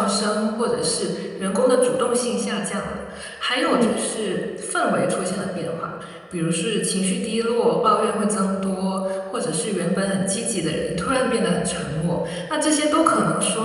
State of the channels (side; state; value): both; identical; correlation 1.00